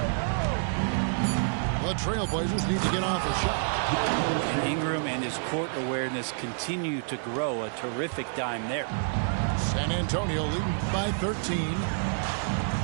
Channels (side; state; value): left; silent; 59 dB below the other